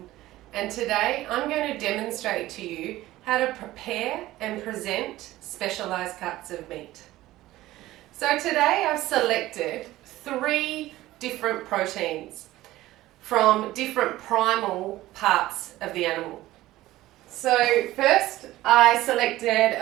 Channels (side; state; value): left; quieter; 16.3 dB